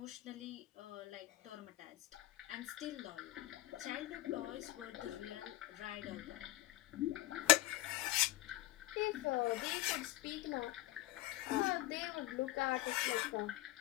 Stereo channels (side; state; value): right; quieter; 17.1 dB